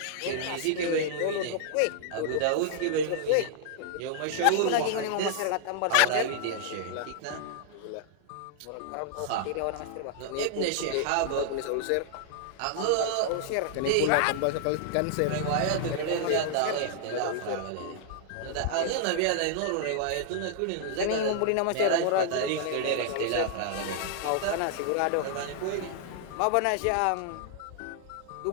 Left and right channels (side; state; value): both; different; correlation -0.01